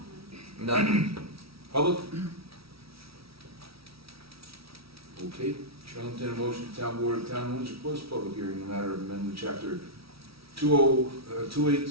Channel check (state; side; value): late; left; 0.76 ms